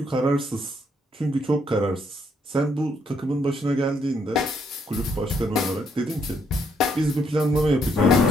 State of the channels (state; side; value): normal; both; correlation 0.73